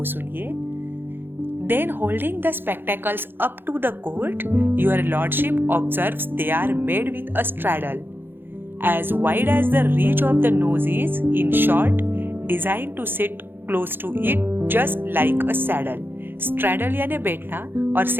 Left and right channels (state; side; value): late; left; 0.10 ms